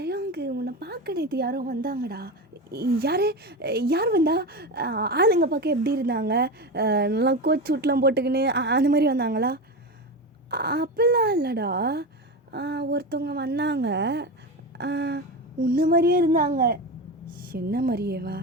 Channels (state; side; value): normal; both; correlation 0.21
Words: உன்னை பார்க்க நேற்று யாரோ வந்தாங்கடா. யார் வந்தா? ஆளுங்க பார்க்க எப்படி இருந்தாங்க? நல்லா கோட் சூட்லாம் போட்டுக்கின்னு அந்த மாதிரி வந்தாங்களா? அப்படிலாம் இல்லைடா. ஒருத்தவங்க வந்தாங்க, உன்ன மாதிரியே இருந்தாங்க. என்ன மாதிரியேவா?